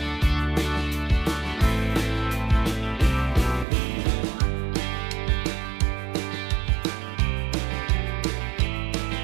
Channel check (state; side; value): drops out; left; at 3.7 s